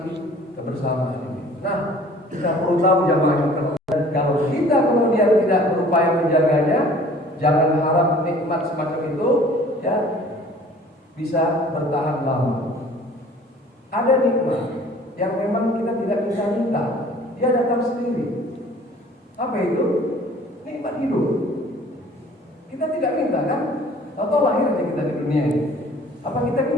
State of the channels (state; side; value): normal; both; correlation 0.51